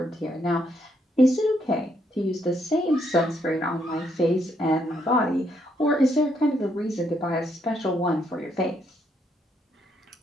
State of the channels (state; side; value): normal; both; correlation 0.74